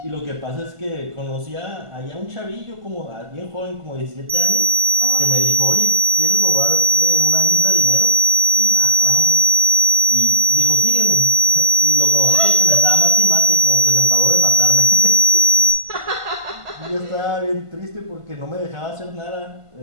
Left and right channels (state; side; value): late; left; 1.5 ms